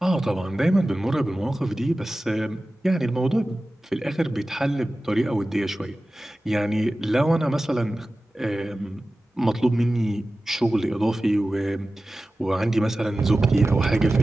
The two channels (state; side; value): normal; both; correlation 0.96